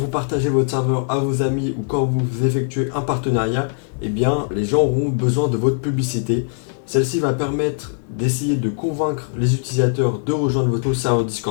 partagez votre serveur à vos amis ou quand vous effectuez un partenariat, eh bien les gens auront besoin de votre publicité. Celle-ci va permettre d'essayer de convaincre les utilisateurs de rejoindre votre serveur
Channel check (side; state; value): right; silent; digital silence